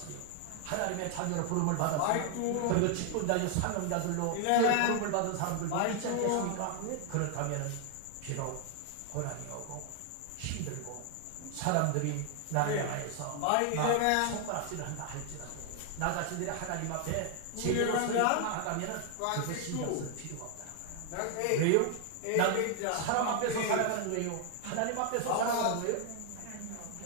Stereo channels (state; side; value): different; both; correlation 0.00